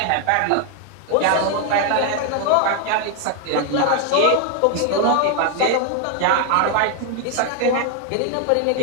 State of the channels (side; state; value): both; different; correlation 0.01